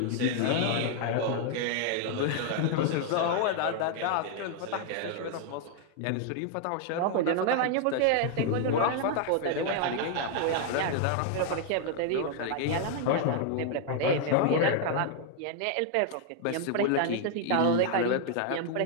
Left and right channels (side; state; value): both; different; correlation 0.00